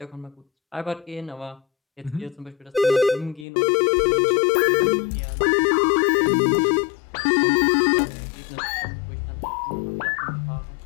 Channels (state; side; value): drops out; right; at 3.5 s